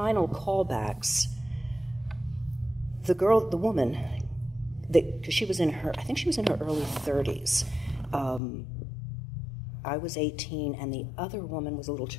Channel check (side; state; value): right; drops out; at 8.4 s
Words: callbacks, the woman, because she was I think she was in her early 30s. I was 18, and the other woman was a little